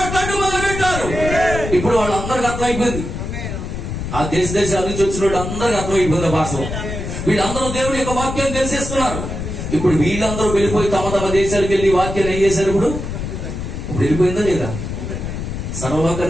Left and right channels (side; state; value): left; noise; rumble, 6 dB below the sound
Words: మొదలు పెట్టారు. ఇప్పుడు వాళ్ళందరికీ అర్థమైపోయింది. ఆ దేశాల నుంచి వచ్చిన వాళ్ళు అందరికీ అర్థమైపోయింది భాష. వీళ్ళందరూ దేవుడి యొక్క వాక్యాన్ని తెలిసేస్తున్నారు. ఇప్పుడు వీళ్ళందరూ వెళ్ళిపోయి తమ తమ దేశాలకు వెళ్ళి వాక్యాన్ని ఏం చేశారు? ఇప్పుడు వెళ్ళిపోయిందా లేదా?